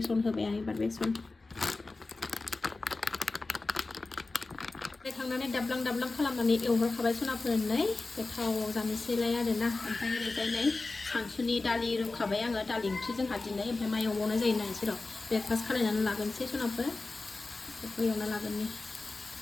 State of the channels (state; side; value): quieter; right; 3.5 dB